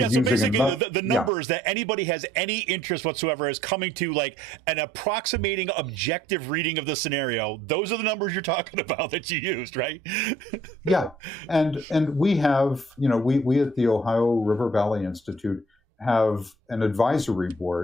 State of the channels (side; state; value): both; normal; correlation 0.60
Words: so using basically the numbers that anybody has any interest whatsoever is coming to like an approximating objective reading of the scenario. Those are the numbers you're talking about that you used, right? Yeah. And we have, we at the Ohio River Valley Institute have an advisory